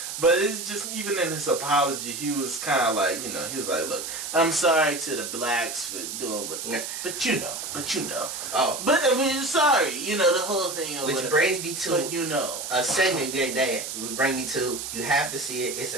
but it's just, even in his apology, he was kind of like, he was like, look, I'm sorry to the blacks for doing what, but you know. Oh. But, sorry, the whole thing. Which brings me to a segment that would bring me to, you have to see it, it's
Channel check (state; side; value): noise; right; hiss, 6 dB below the sound